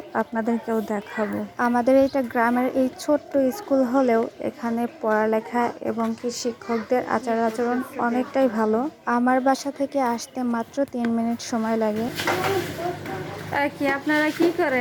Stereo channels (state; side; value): identical; both; correlation 1.00